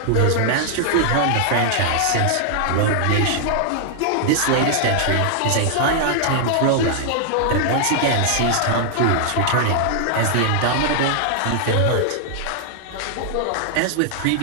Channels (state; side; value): different; both; correlation 0.00